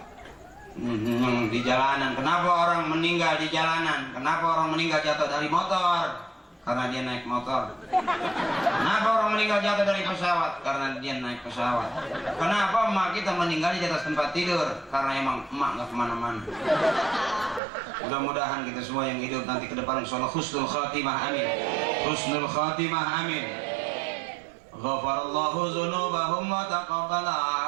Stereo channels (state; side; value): drops out; left; at 17.6 s